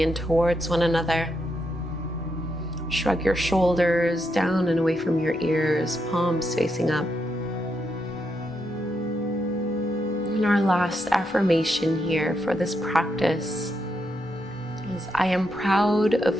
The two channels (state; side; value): normal; both; correlation 0.81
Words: towards one another. Shrug your shoulders down and away from your ears, palms facing up. And our last affirmation here for this practice is, I am proud of